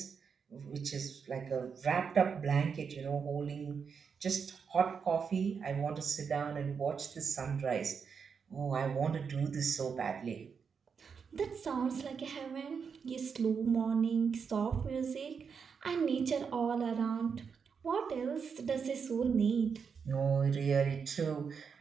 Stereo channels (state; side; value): quieter; left; 6.2 dB